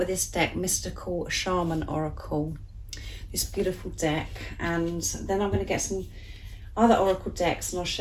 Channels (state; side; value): identical; both; correlation 1.00